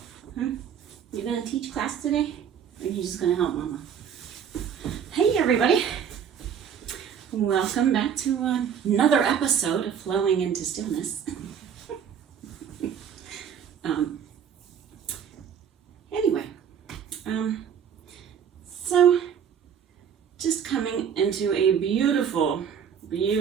You gonna teach class today? Or are you just gonna help Mama? Hey everybody! Welcome back to another episode of Flowing into Stillness. So just coming into a beautiful,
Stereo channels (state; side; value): quieter; left; 7.9 dB